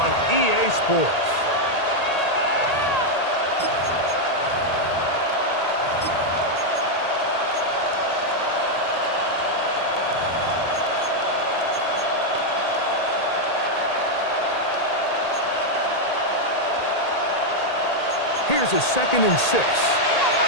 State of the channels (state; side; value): late; right; 1.8 ms